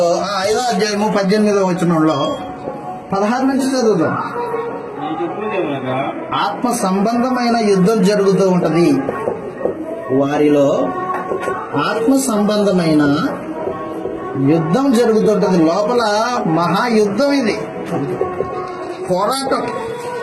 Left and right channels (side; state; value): both; identical; correlation 1.00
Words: 5వ అధ్యాయము 18వ వచనంలో 16 నుంచి చదువుతాం. ఆత్మ సంబంధమైన యుద్ధం జరుగుతూ ఉంటది. వారిలో ఆత్మ సంబంధమైన యుద్ధం జరుగుతుంటది. లోపల మహాయుద్ధం ఇది, పోరాటం.